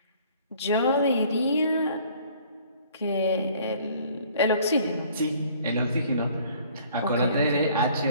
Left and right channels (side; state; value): both; inverted; correlation -0.56